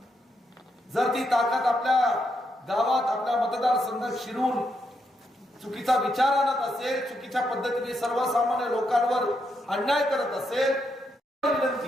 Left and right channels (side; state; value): both; normal; correlation 0.80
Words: जर ती ताकद आपल्या गावात, आपल्या मतदारसंघात शिरून चुकीचा विचार आणत असेल, चुकीच्या पद्धतीने सर्वसामान्य लोकांवर अन्याय करत असेल,